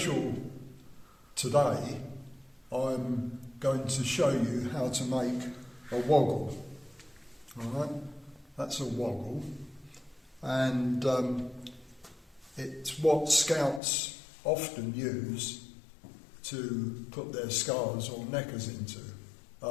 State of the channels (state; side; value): drops out; right; at 13.8 s